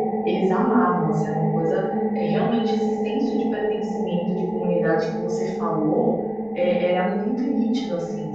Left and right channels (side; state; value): left; noise; rumble, 28 dB below the sound